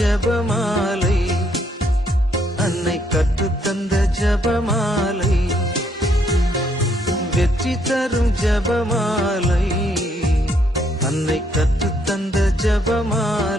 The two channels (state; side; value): normal; both; correlation 0.71